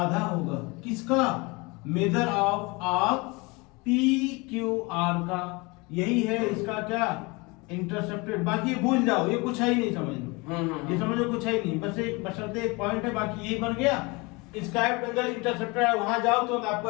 होगा किसका, measure of arc P Q R का। यही है इसका क्या, इंटरसेप्टेड। बाकी ये भूल जाओ, ये कुछ है ही नहीं, समझ लो ये समझो कुछ है ही नहीं, बस एक बशर्ते एक पॉइंट है, बाकी यही बन गया। इंस्क्राइब्ड एंगल इंटरसेप्टेड है, वहां जाओ तो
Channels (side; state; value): right; quieter; 26.4 dB